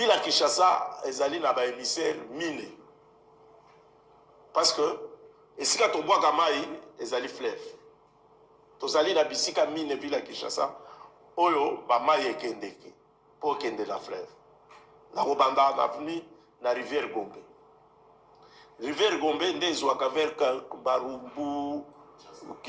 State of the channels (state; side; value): identical; both; correlation 1.00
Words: ya Kinshasa ezali na ba émissaire mine parce que esika tobwaka mai ezali fleuve tozali na bisika mine ville ya Kinshasa oyo ba mai ekendeki pour kende la fleuve. Na Robanda, na venu na rivière Gombe. Rivière Gombe, nde ezwaka vers Barumbu,